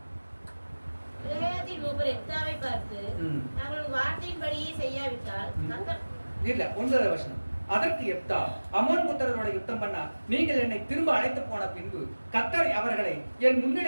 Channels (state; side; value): inverted; both; correlation -1.00